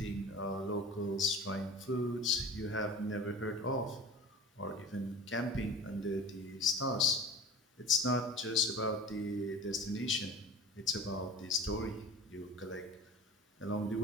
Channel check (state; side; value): normal; both; correlation 0.38